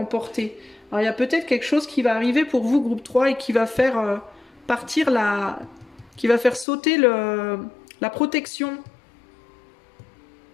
Alors il y a peut-être quelque chose qui va arriver pour vous, groupe 3, et qui va faire partir qui va faire sauter la protection.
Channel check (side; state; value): right; drops out; at 6.7 s